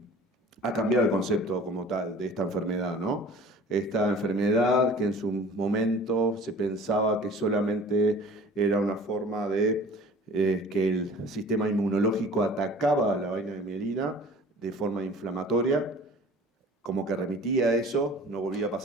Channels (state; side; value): normal; both; correlation 0.45